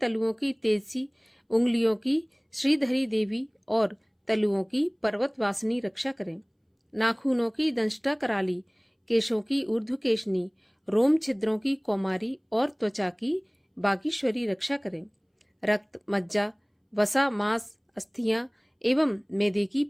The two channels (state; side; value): identical; both; correlation 1.00